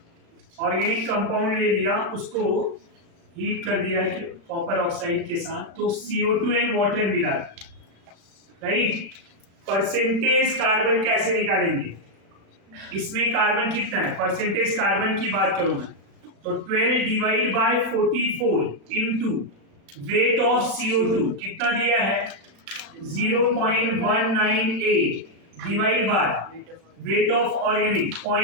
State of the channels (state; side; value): late; left; 36 ms